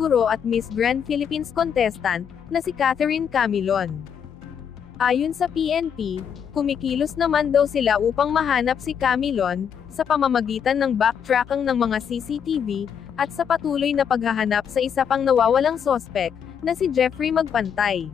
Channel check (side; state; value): right; quieter; 7.8 dB